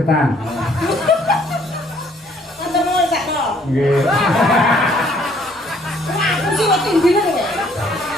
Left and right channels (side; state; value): both; normal; correlation 0.63